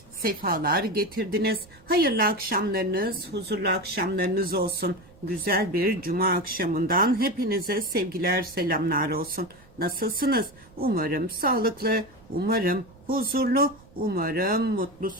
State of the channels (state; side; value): noise; right; rumble, 25 dB below the sound